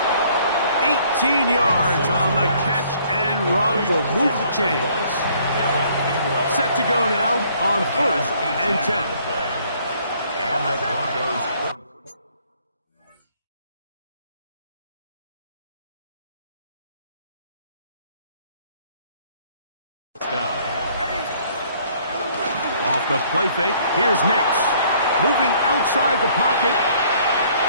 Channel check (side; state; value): both; inverted; correlation -0.61